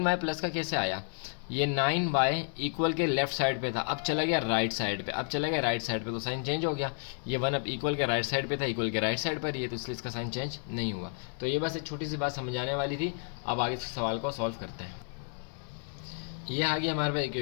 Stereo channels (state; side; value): silent; right; 57 dB below the other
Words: प्लस का कैसे आया, ये 9y इक्वल के लेफ्ट साइड पे था, अब चला गया राइट साइड पे, तो साइन चेंज हो गया। ये 1 अब इक्वल के राइट साइड पे था, इक्वल के राइट साइड पर ही है, तो इसलिए इसका साइन चेंज नहीं हुआ। तो ये बस एक छोटी सी बात समझाने वाली थी। अब आगे इस सवाल को सॉल्व करते हैं। ये आ गया हमारे पास